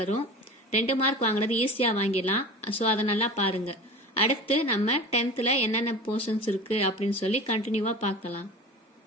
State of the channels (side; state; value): both; normal; correlation 0.35